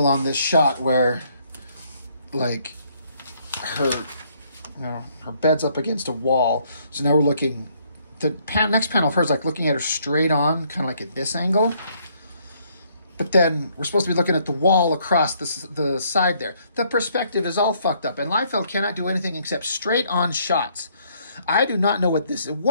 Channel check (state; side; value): inverted; both; correlation -0.67